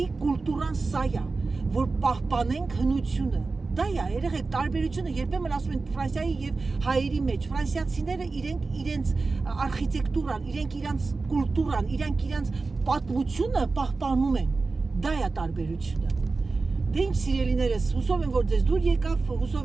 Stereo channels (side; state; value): left; quieter; 3.9 dB